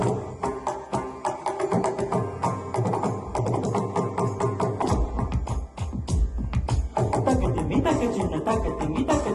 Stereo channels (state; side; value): identical; both; correlation 1.00